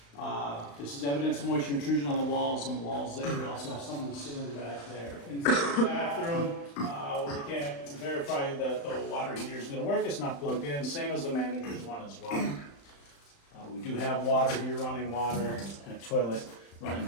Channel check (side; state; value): right; late; 35 ms